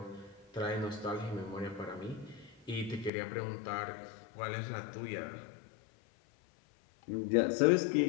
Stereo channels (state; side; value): drops out; right; at 3.1 s